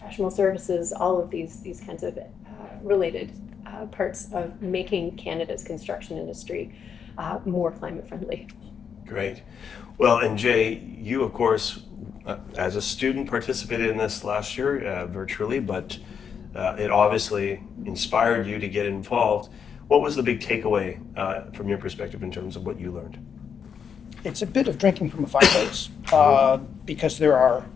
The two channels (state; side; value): quieter; right; 7.1 dB